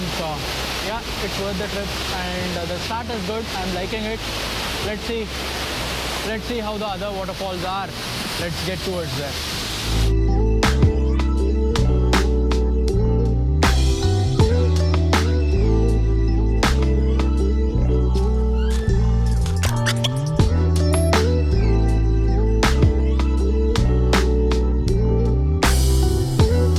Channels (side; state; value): both; identical; correlation 1.00